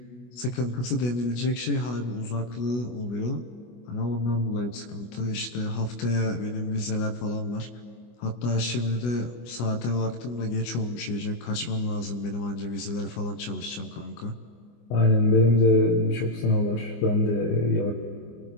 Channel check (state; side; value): late; right; 25 ms